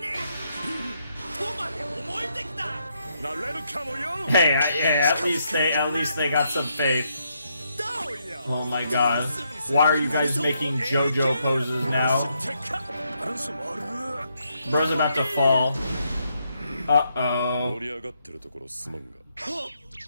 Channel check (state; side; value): inverted; both; correlation -0.77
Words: Hey, at least they got some faith. Oh my god. Why are you guys making JoJo poses now? Bro's about to fall. Uh-oh.